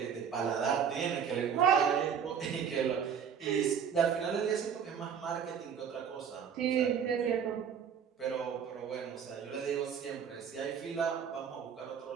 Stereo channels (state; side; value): quieter; left; 7.5 dB